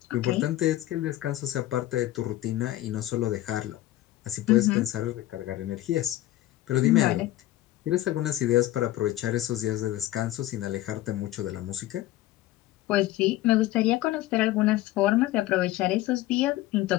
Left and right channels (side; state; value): right; quieter; 15.3 dB